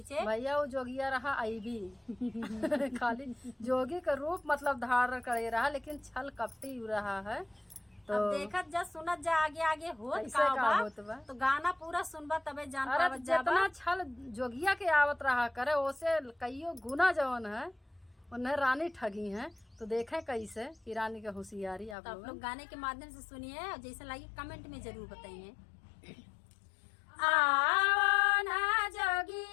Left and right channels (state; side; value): drops out; right; at 22.0 s